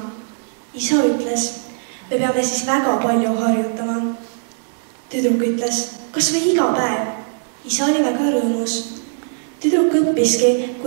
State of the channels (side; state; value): left; silent; digital silence